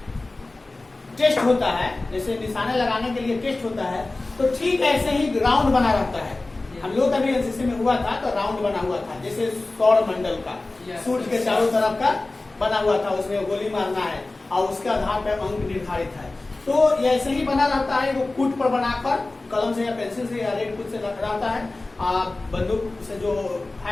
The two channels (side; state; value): right; quieter; 3.1 dB